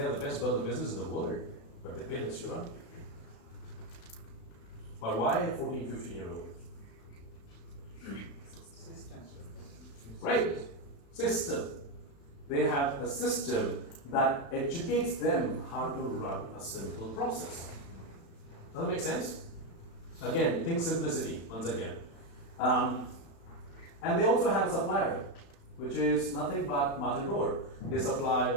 the best burger business in the world, but they pay less, you run. But why a 14, 15-year-old? Right, system. They have a system that educates them how to run a simple process. Does that make sense? Again, think simplicity once again. And they also have a supplier, which is nothing but Martin Road. They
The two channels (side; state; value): right; late; 36 ms